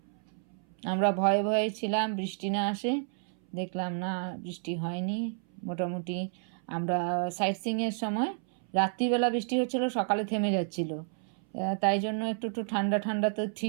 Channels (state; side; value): silent; left; 57 dB below the other